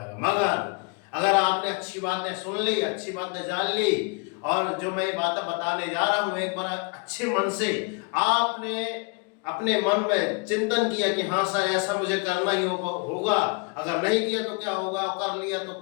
मगर अगर आपने अच्छी बातें सुन ली, अच्छी बातें जान ली, और जो मैं ये बातें बताने जा रहा हूं एक बार अच्छे मन से आपने अपने मन में चिंतन किया कि हाँ सर ऐसा मुझे करना ही होगा, अगर नहीं किया तो क्या होगा, कर लिया तो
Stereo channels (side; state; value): right; quieter; 33.1 dB